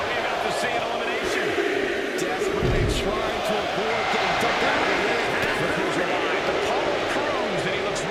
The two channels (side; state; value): both; identical; correlation 1.00